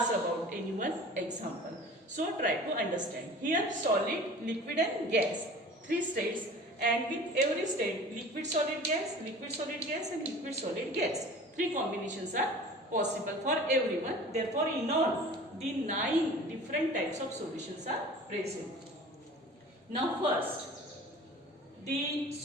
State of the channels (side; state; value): both; normal; correlation 0.42